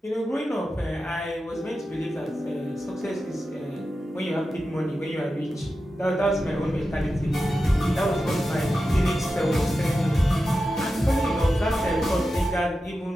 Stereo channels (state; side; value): normal; both; correlation 0.92